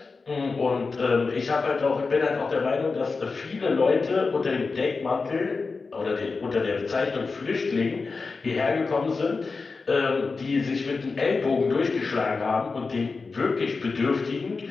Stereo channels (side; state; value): right; quieter; 4.3 dB